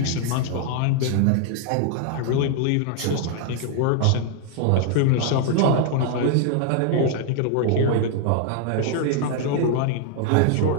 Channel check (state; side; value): different; both; correlation 0.00